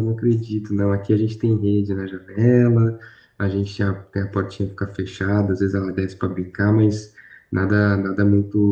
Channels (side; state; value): both; identical; correlation 1.00